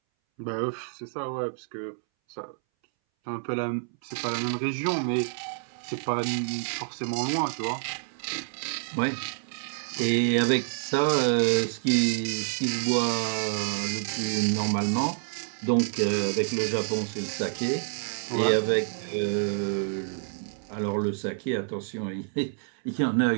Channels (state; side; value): silent; left; 59 dB below the other